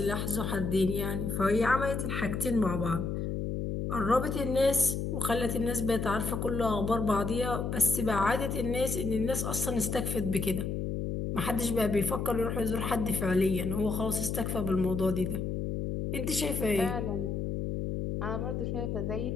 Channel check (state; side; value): noise; left; hum, 2 dB below the sound